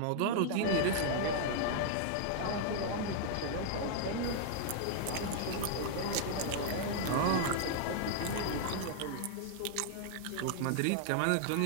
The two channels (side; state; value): both; different; correlation -0.01